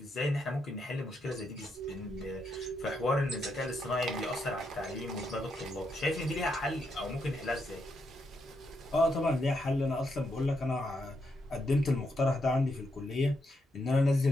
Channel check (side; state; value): both; normal; correlation 0.80